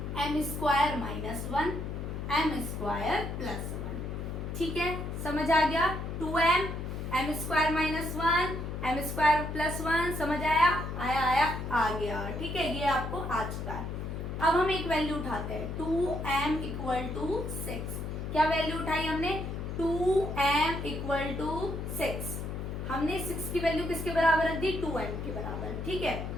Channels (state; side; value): noise; left; hum, 5 dB below the sound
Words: m square minus 1, m square plus 1। ठीक है, समझ आ गया। 2m, m square minus 1, m square plus 1, समझ आया, आया आ गया। ठीक है, ये आपको आ चुका है। अब हम एक वैल्यू उठाते हैं, 2m इक्वल टू 6। क्या वैल्यू उठाई हमने, 2m इक्वल टू 6। हमने 6 की वैल्यू किसके बराबर रख दी, 2m के बराबर। ठीक है,